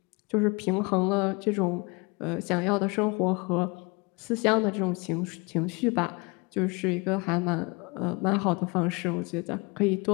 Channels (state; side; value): quieter; right; 28.1 dB